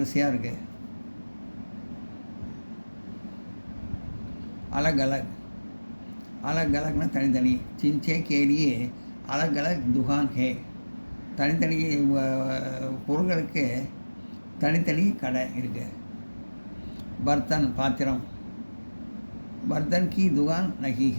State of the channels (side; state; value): both; inverted; correlation -1.00